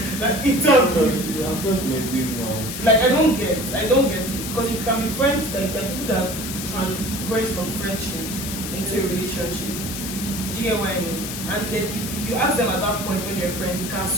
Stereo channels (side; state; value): left; noise; hiss, 7 dB below the sound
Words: Like it's Because I'm friends with my babe now. like I don't get it. Because you can be friends, like there are people that transgress from friendships into a relationship. Do you get what I mean? And then if you ask them at that point when they're friends, you can